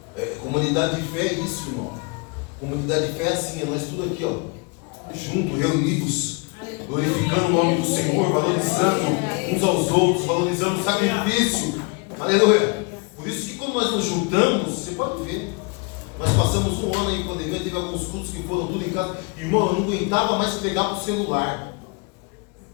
Comunidade de fé é isso, irmão. Comunidade de fé é assim, é nós tudo aqui, ó, juntos, reunidos, glorificando o nome do Senhor, valorizando uns aos outros, valorizando o sacrifício. Aleluia. Por isso que quando nós nos juntamos, você pode ver, nós passamos um ano aí em pandemia, teve alguns cultos que foram tudo em casa. Irmão, eu não aguentava mais pregar para o celular.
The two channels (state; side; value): quieter; right; 30.1 dB